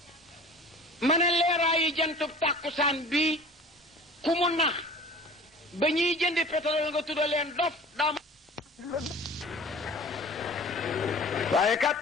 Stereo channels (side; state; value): both; normal; correlation 0.43